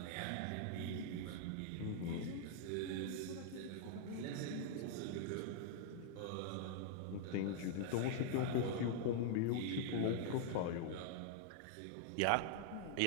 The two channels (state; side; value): different; both; correlation -0.01